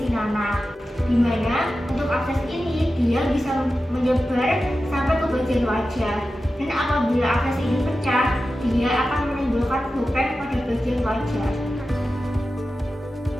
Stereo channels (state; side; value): normal; both; correlation 0.93